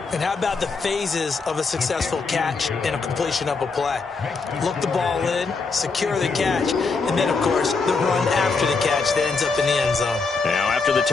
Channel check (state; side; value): quieter; right; 4.4 dB